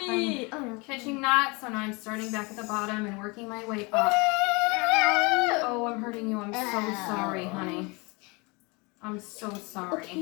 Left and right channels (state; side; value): quieter; right; 28.1 dB